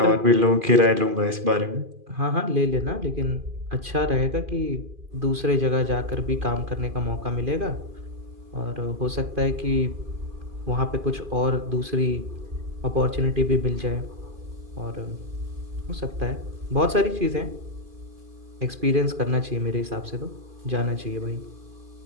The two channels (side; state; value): left; late; 2.4 ms